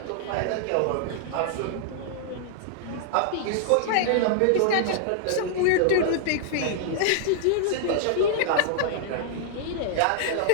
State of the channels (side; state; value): both; different; correlation -0.01